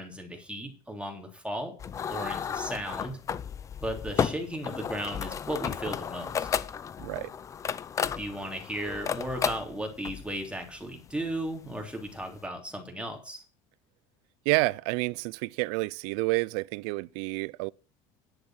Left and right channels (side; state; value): both; normal; correlation 0.33